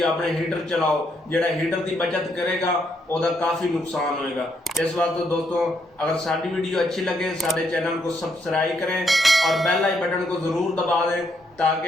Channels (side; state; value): both; normal; correlation 0.75